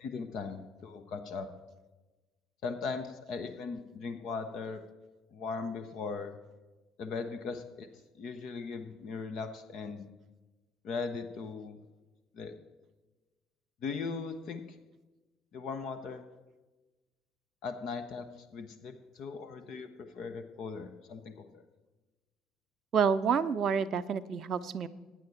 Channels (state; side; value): normal; both; correlation 0.60